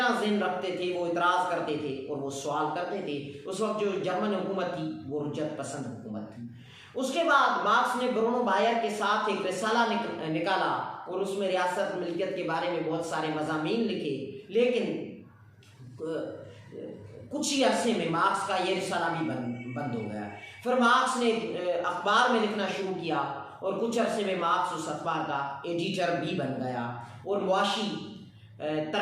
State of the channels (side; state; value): both; identical; correlation 1.00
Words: ज़हन रखते थे, वो इतराज़ करते थे और वो सवाल करते थे। उस वक्त जो जर्मन हुकूमत थी वो रुजत पसंद हुकूमत थी। उसके बाद मार्क्स ने ब्रूनो बायर के साथ एक रिसाला निकाला और उसमें रियासत मिल्कियत के बारे में बहुत सारे मज़ामीन लिखे। लेकिन कुछ ही अरसे में मार्क्स का ये रिसाला भी बंद हो गया। फिर मार्क्स ने अखबार में लिखना शुरू किया और कुछ अरसे में मार्क्स उस अखबार का एडिटर भी बन गया और मुआशी